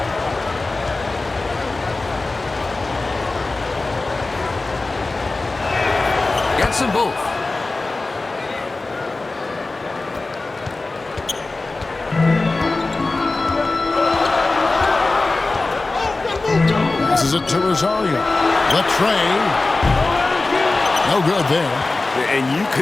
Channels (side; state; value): right; quieter; 3.4 dB